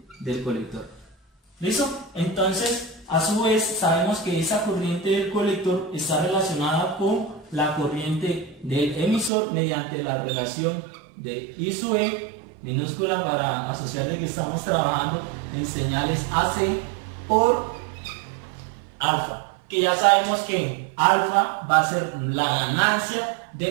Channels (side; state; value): left; drops out; at 9.3 s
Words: del colector. ¿Listo? Entonces, a su vez, sabemos que esa corriente del colector está relacionada con la corriente del emisor mediante la relación de I sub E, minúscula para asociar de que estamos trabajando en señales AC, por alfa, que ya sabemos que alfa va a ser la ganancia